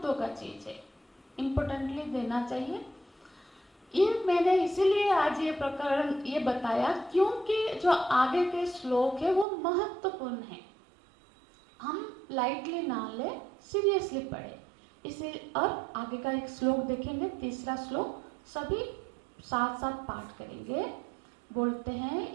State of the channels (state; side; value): drops out; left; at 9.5 s